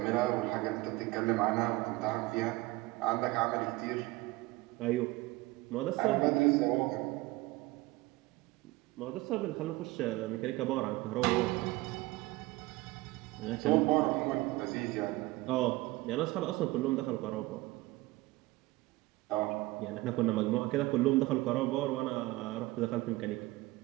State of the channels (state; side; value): quieter; left; 20.1 dB